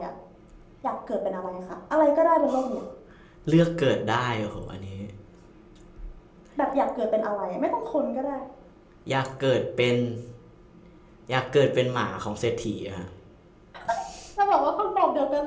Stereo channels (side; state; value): both; identical; correlation 1.00